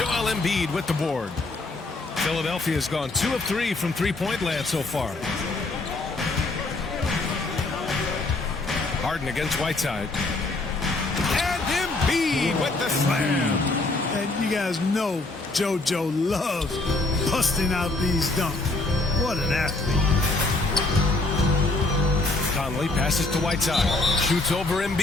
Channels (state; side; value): quieter; right; 3.1 dB